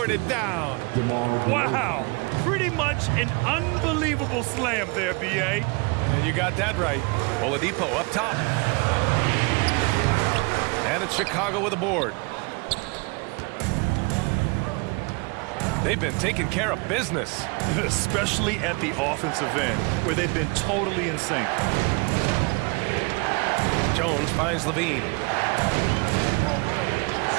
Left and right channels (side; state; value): left; quieter; 29.8 dB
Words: it down. Wow, pretty much an unbelievable slam there, B.A. And you got that right. Oladipo up top. And it's Chicago with a board. They've been taking care of business. Especially at the offensive end, where they've been totally in sync. Jones finds Levine.